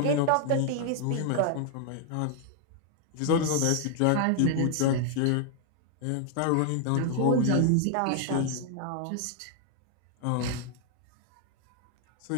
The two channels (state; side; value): different; both; correlation 0.00